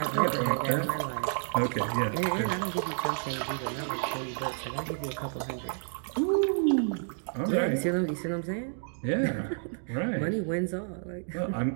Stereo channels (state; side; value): silent; left; digital silence